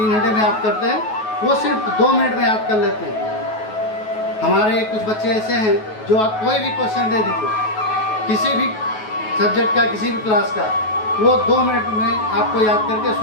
घंटे में याद करते हैं, वो सिर्फ 2 मिनट में याद कर लेते हैं। हमारे कुछ बच्चे ऐसे हैं जो आप कोई भी क्वेश्चन दे दीजिए, किसी भी सब्जेक्ट का, किसी भी क्लास का, वो 2 मिनट में आपको याद करके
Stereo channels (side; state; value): right; late; 9.3 ms